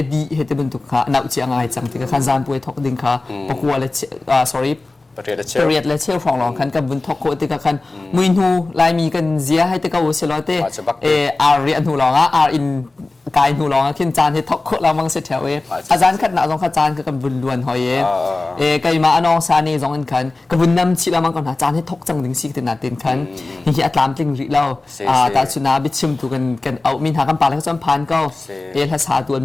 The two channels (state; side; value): quieter; right; 3.2 dB